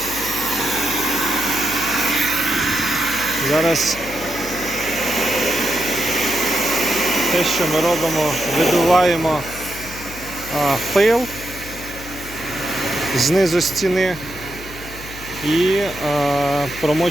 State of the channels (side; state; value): left; noise; hum, 15 dB below the sound